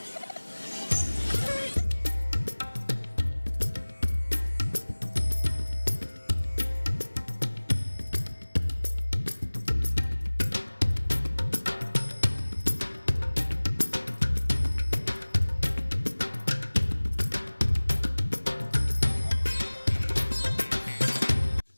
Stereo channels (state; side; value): inverted; both; correlation -1.00